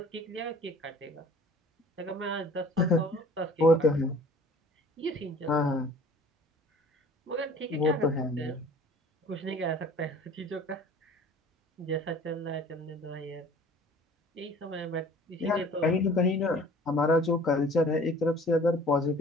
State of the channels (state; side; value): normal; both; correlation 0.48